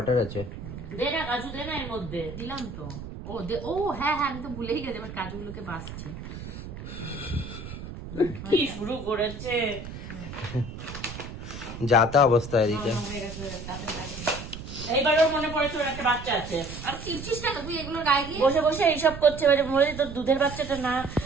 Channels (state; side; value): noise; right; rumble, 10 dB below the sound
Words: আছে। দে না কাজু, দে না এর মধ্যে। দিলাম তো। ও হ্যাঁ হ্যাঁ, আমি তো ভুলেই গেছি, এবার কাজুগুলোকে বাছছি। কি শুরু করেছে? যাতা অবস্থা এদিকে। এইবারও মনে পড়েছে ওর একটা বাচ্চা আছে। আর চিপছিস কেন তুই এগুলোর গায়ে গিয়ে? বসে বসে এইসব করছে, এবারে বলে তোর দুধের বাচ্চাটা না